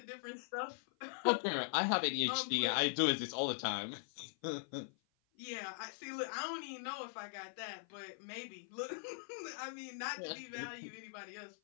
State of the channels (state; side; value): silent; right; 50 dB below the other